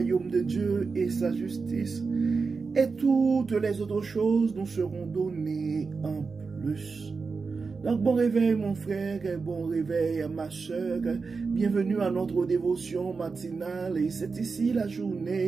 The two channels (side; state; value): left; quieter; 4.6 dB